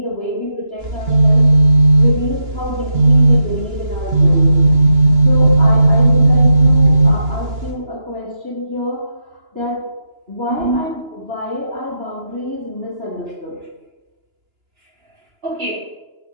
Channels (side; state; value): left; late; 2.9 ms